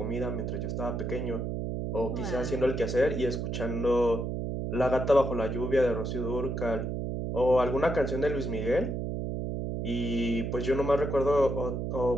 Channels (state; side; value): noise; right; hum, 2 dB below the sound